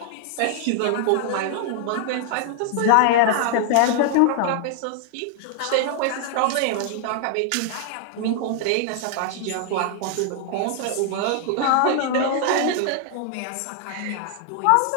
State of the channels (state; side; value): different; both; correlation -0.01